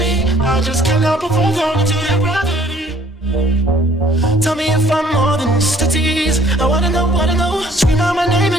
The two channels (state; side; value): normal; both; correlation 0.60